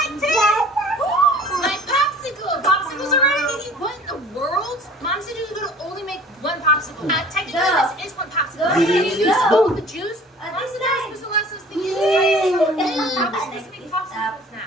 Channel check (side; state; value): both; normal; correlation 0.48